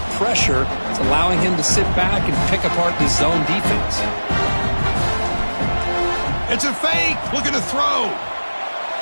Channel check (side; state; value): both; inverted; correlation -1.00